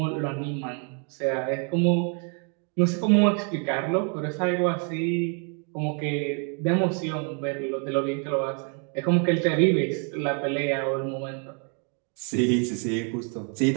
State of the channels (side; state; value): left; quieter; 39.9 dB